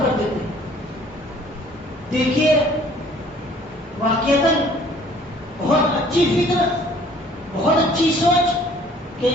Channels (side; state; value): both; normal; correlation 0.55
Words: کر دیتے ہیں. دیکھیے واقعتاً بہت اچھی فکر, بہت اچھی سوچ کہ